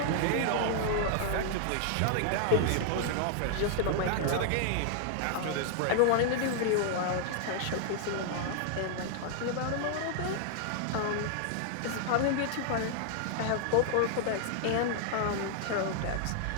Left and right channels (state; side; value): different; both; correlation -0.01